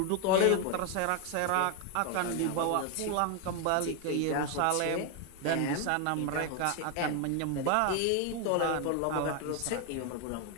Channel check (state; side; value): different; both; correlation 0.01